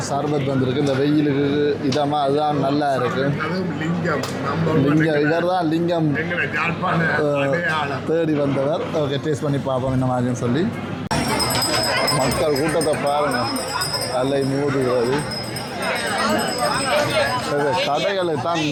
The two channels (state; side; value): identical; both; correlation 1.00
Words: சர்பத் வந்திருக்கு இந்த வெயிலுக்கு இதமாக, அதுதான் நல்லா இருக்கு. லிங்கம் இவர் தான் லிங்கம் தேடி வந்தவர். ஓகே, டேஸ்ட் பண்ணி பார்ப்போம் என்ன மாதிரின்னு சொல்லி. மக்கள் கூட்டத்தை பாருங்க, அல்லை மூடுகிறது. கடைகளை தான்